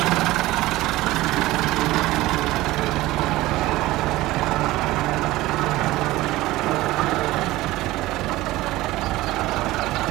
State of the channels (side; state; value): left; quieter; 17.9 dB